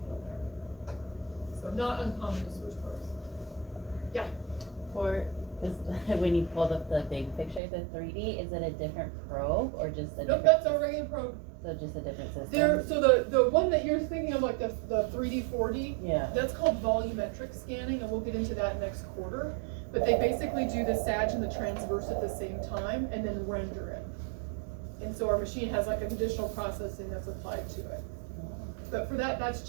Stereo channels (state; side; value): drops out; left; at 7.6 s